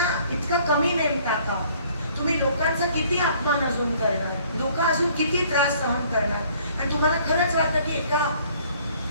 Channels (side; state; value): both; inverted; correlation -0.58